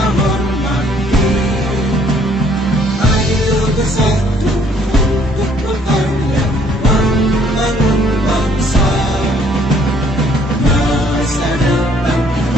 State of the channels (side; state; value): both; normal; correlation 0.63